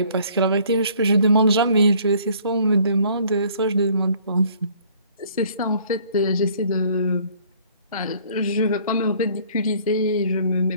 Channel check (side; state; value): both; inverted; correlation -0.58